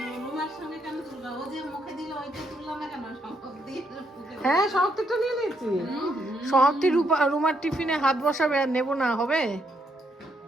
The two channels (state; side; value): normal; both; correlation 0.76